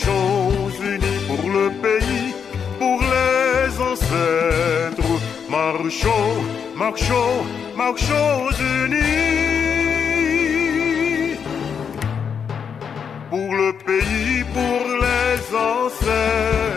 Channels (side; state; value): right; quieter; 7.0 dB